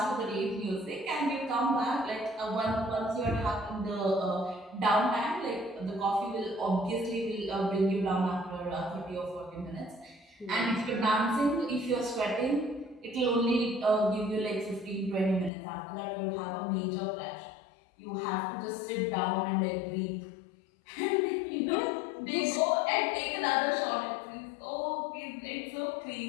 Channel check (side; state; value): right; drops out; at 15.5 s